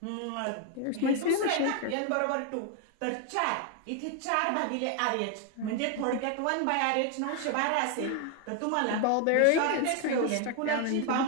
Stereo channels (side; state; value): both; different; correlation 0.01